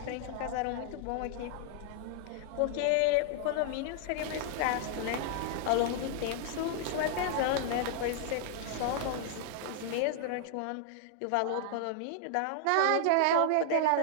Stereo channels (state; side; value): different; both; correlation -0.01